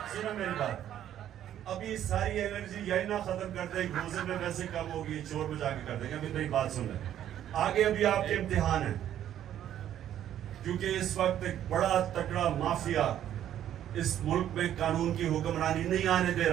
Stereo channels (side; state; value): left; quieter; 11.1 dB